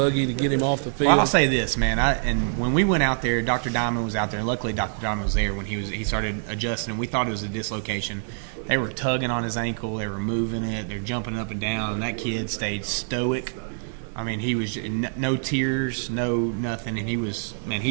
to get him off the field. Well, I'll say this, man. And when we went out there, Dr. Diamond was out there. And luckily, Dr. Diamond was there when he started adjusting. And we thought it was a dislocation. They were tugging on his ankle. They were moving it. They're jumping up and down. And that kid stayed stoic. I mean, he was no tears, no nothing. And he was, man,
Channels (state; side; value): silent; left; digital silence